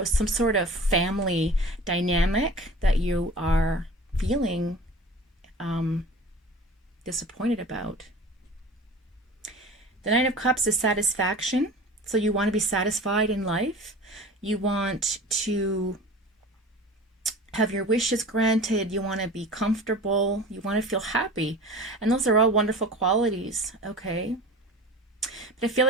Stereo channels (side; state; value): both; normal; correlation 0.39